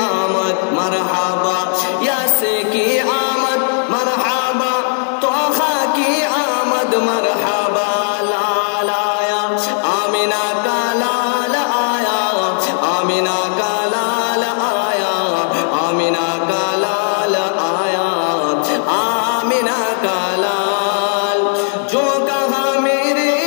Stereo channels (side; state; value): right; silent; 63 dB below the other